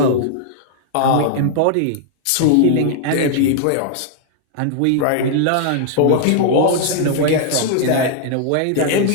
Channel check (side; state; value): both; different; correlation -0.01